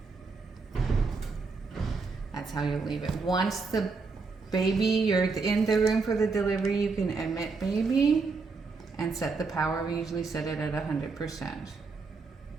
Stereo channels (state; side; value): quieter; left; 4.4 dB